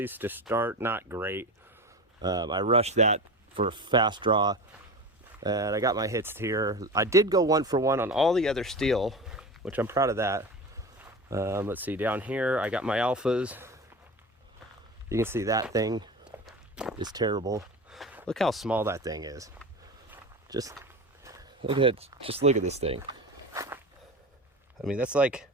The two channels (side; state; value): both; normal; correlation 0.29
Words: to start, not great. I rushed that for a fast draw, and I got my hits here. I did go 1 for 1 on all the other steel, which I'm proud of that. Let's see, down here I got my alphas. You can see that thing is terrible. Look how small that thing is. Just look at this thing. I mean, that's like,